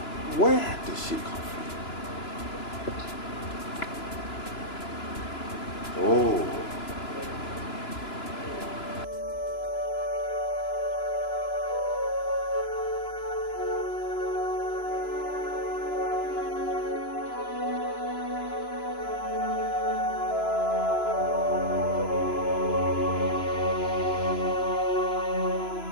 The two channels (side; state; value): right; late; 2.9 ms